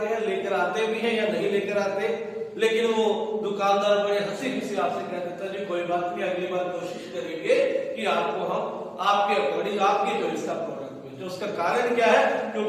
हैं, लेकर आते भी हैं या नहीं लेकर आते, लेकिन वो दुकानदार बड़े हंसी खुशी आपसे कह देता है जी कोई बात नहीं, अगली बार कोशिश करेंगे कि आपको हम आपके अकॉर्डिंग आपकी चॉइस का प्रोडक्ट भेजें। उसका कारण क्या है,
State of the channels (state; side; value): identical; both; correlation 1.00